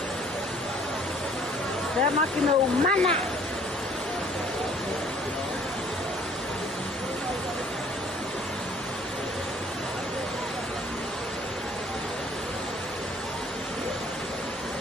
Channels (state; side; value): normal; both; correlation 0.57